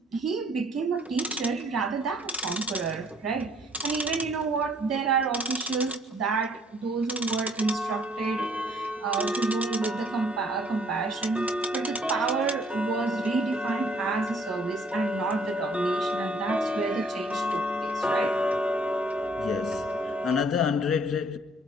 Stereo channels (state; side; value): normal; both; correlation 0.60